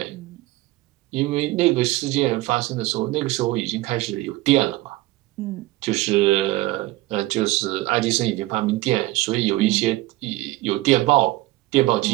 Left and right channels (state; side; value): quieter; left; 18.7 dB